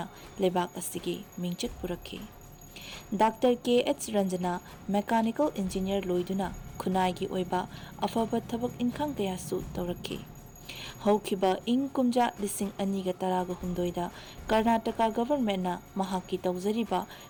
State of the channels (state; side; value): identical; both; correlation 1.00